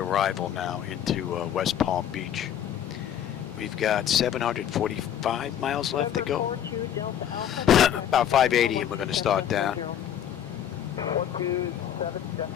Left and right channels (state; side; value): quieter; right; 10.0 dB